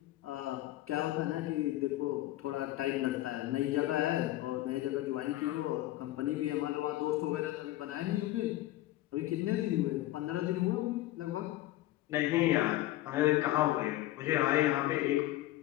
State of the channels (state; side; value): quieter; right; 15.9 dB